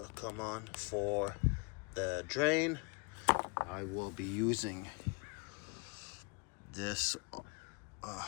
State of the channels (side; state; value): right; quieter; 31.9 dB